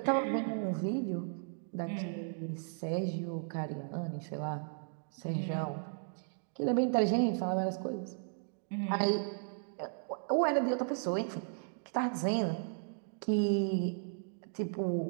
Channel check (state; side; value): silent; left; digital silence